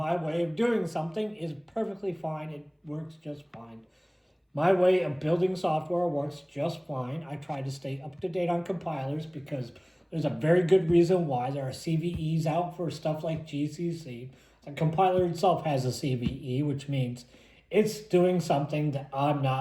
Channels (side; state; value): both; identical; correlation 1.00